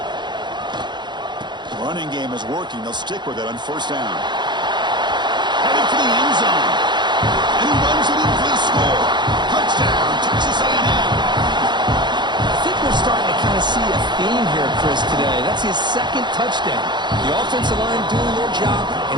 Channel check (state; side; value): late; left; 0.22 ms